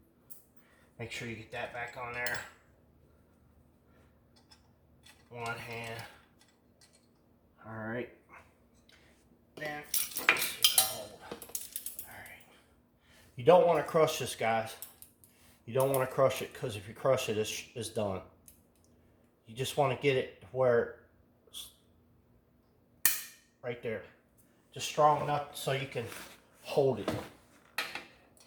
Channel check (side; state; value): both; identical; correlation 1.00